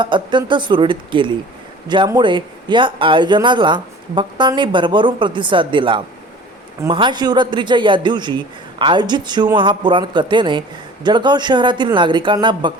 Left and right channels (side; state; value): both; normal; correlation 0.44